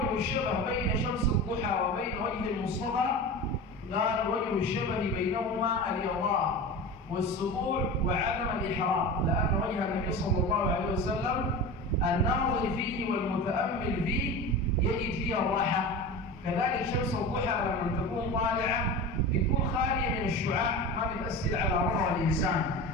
الشبه بين شمس الضحى وبين وجه المصطفى؟ قال: وجه الشبه بينهما الإرضاء والسطوع وعدم الإحرام، لأن وجه النبي صلى الله عليه وسلم الناظر فيه والمتأمل فيه يجد فيه الراحة. كذلك شمس الضحى لما تكون طالعة بتكون خالية من الشعاع، ما بتأثر على روح الإنسان.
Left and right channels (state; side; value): normal; both; correlation 0.29